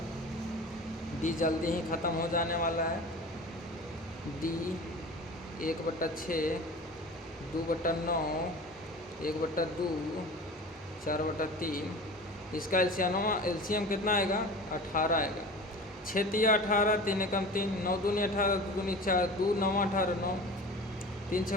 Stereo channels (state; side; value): normal; both; correlation 0.36